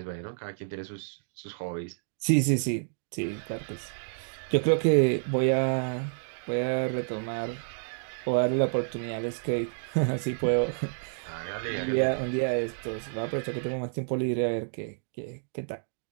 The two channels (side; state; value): left; silent; digital silence